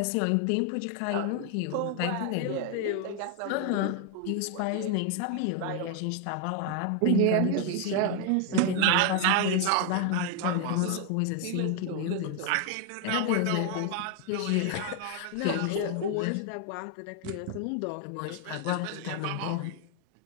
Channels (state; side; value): different; both; correlation 0.00